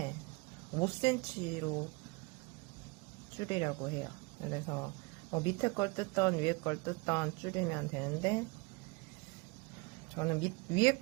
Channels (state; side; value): quieter; left; 27.2 dB